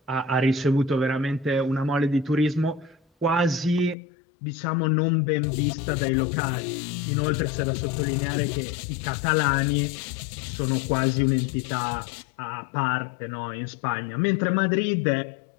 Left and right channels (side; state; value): right; drops out; at 4.0 s